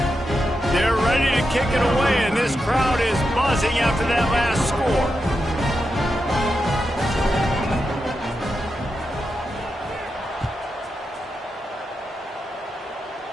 They're ready to kick it away, and this crowd is buzzing after that last score.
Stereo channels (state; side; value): normal; both; correlation 0.87